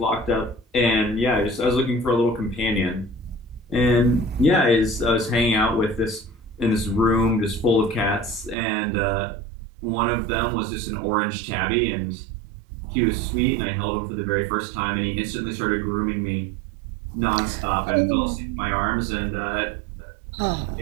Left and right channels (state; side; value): drops out; left; at 8.6 s